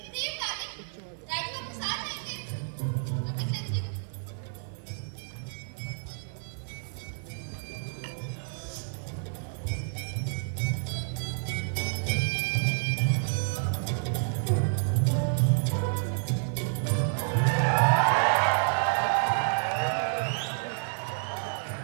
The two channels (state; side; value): silent; left; 58 dB below the other